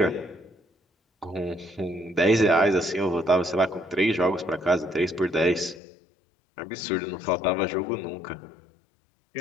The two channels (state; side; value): drops out; right; at 5.8 s